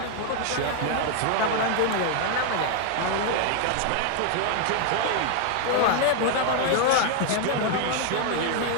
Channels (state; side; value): different; both; correlation 0.00